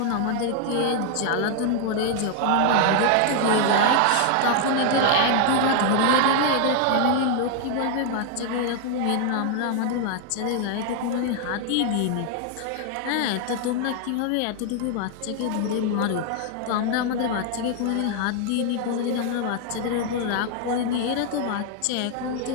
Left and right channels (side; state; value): both; different; correlation 0.00